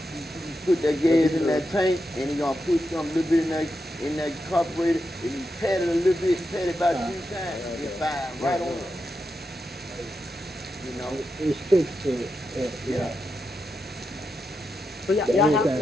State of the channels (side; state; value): both; normal; correlation 0.87